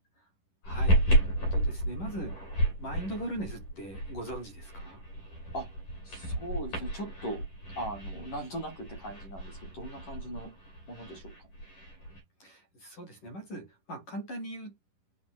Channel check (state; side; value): late; right; 11 ms